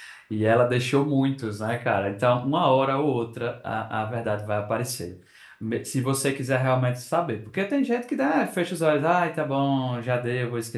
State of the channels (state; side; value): identical; both; correlation 1.00